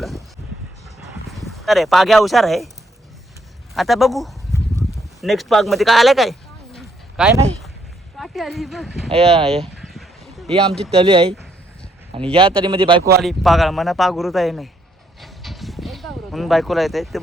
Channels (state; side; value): normal; both; correlation 0.72